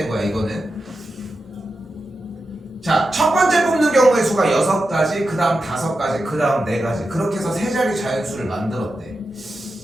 거야 이거는. 자, 첫 번째 뽑는 경우의 수가 6가지, 그 다음 5가지, 그 다음 4가지. 그렇게 해서 3자리 자연수를 만들었대.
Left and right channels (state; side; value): normal; both; correlation 0.90